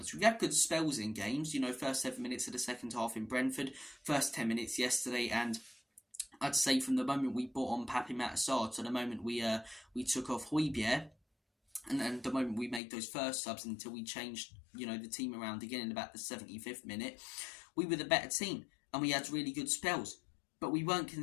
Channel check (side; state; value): right; drops out; at 12.8 s